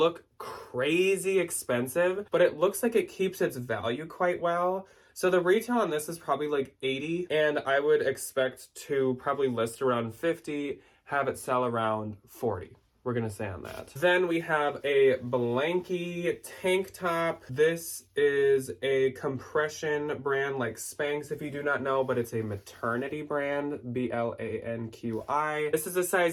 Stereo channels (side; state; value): both; identical; correlation 1.00